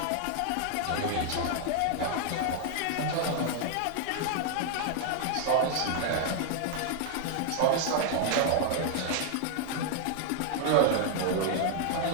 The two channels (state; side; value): different; both; correlation 0.00